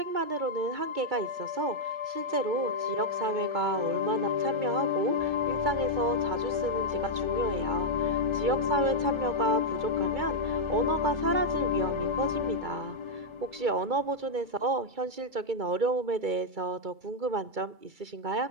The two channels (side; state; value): left; late; 2.3 ms